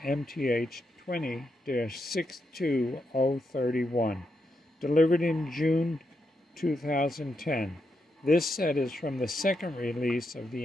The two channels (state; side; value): normal; both; correlation 0.83